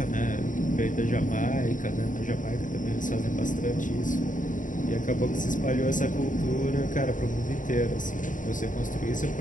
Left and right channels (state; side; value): late; right; 0.38 ms